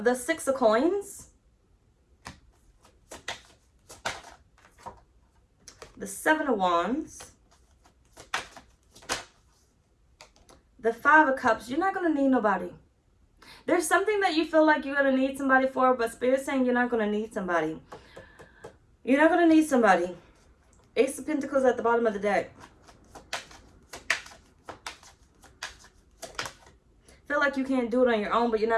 the 6 of coins. The 7 of wands. The 5 of cups. You're not going to need nobody. There's something that you feel like you're going to need somebody for, but Spirit's saying you're not going to need somebody. You're not going to need somebody. Ace of Pentacles at the bottom of the deck. Feel like you can't do it on your own, but you're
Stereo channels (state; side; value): identical; both; correlation 1.00